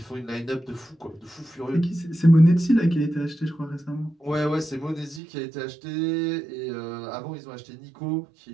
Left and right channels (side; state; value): left; drops out; at 5.2 s